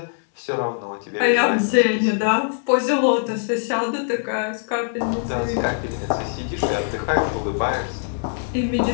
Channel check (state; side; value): silent; right; digital silence